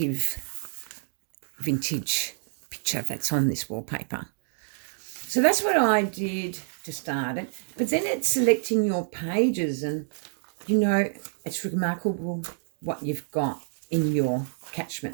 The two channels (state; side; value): silent; left; digital silence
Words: vintage picture that's on this wallpaper. So that's what I did to start it. But then it's selecting your pages, and, you know, it's remarkable what you've got in your